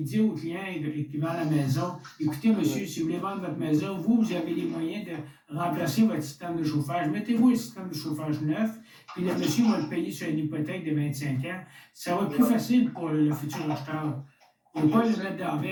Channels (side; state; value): both; identical; correlation 1.00